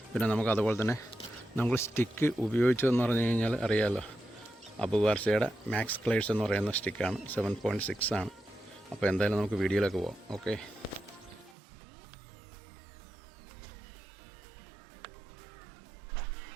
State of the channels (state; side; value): drops out; left; at 11.6 s